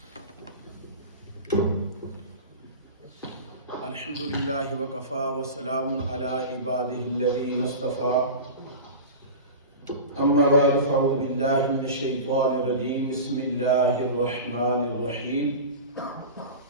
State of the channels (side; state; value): both; inverted; correlation -0.30